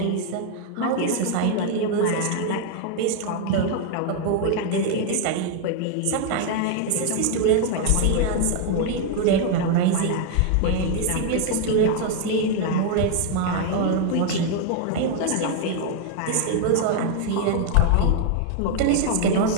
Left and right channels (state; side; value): different; both; correlation 0.00